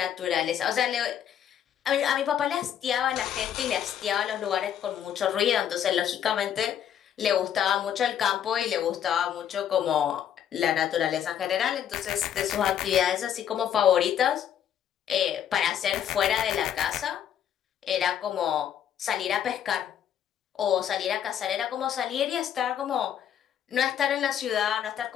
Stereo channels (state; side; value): quieter; right; 9.6 dB